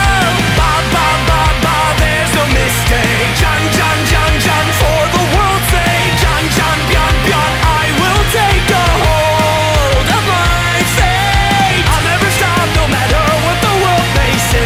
Ba, there's no mistake. Jan, for the world's sake. Jan, Bian, I will take a hold of my fate. I'll never stop, no matter what the world may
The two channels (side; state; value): both; identical; correlation 1.00